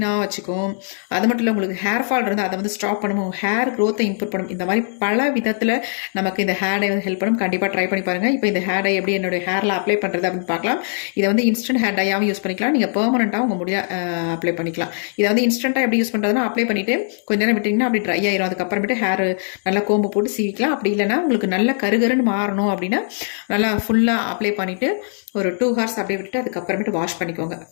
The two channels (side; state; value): right; silent; 61 dB below the other